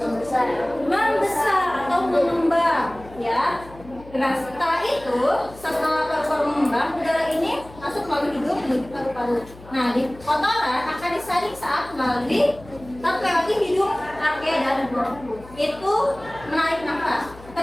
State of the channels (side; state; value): left; noise; hum, 20 dB below the sound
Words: Membesar atau mengembang, ya. Nah, setelah paru-paru mengembang, udara ini masuk melalui hidung menuju paru-paru. Nah, di kotoran akan disaring saat melalui hidung, trachea dan bronkus. Itu menarik nafas.